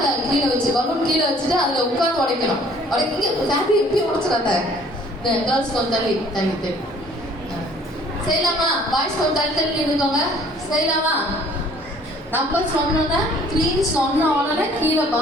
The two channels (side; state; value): both; normal; correlation 0.56